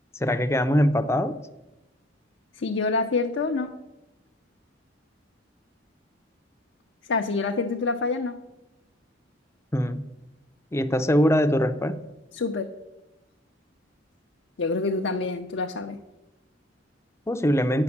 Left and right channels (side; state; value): both; normal; correlation 0.56